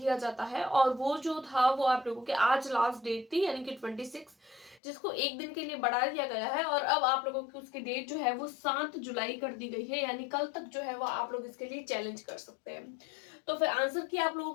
जाता है और वो जो था वो आप लोगों के आज लास्ट डेट थी यानी कि 26, जिसको एक दिन के लिए बढ़ा दिया गया है और अब आप लोगों की उसकी डेट जो है वो 7 जुलाई कर दी गई है, यानी कल तक जो है वो आप लोग इसके लिए चैलेंज कर सकते हैं। तो फिर आंसर की आप लोगों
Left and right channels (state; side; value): drops out; right; at 4.8 s